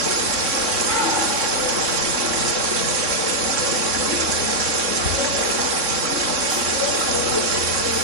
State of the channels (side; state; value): left; late; 3.6 ms